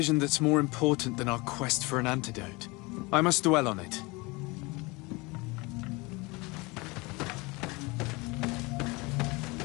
that's more important than our quest for an antidote. I must dwell on it.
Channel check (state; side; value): quieter; right; 25.2 dB